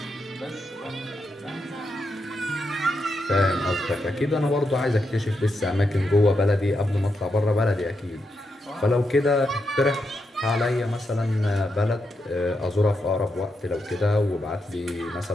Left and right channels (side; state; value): both; normal; correlation 0.84